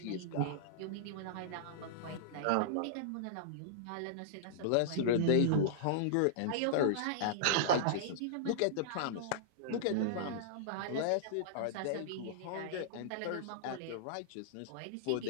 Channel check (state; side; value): different; both; correlation -0.02